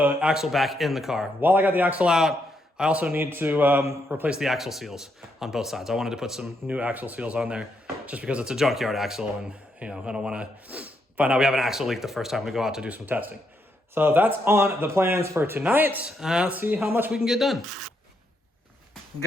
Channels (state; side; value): normal; both; correlation 0.78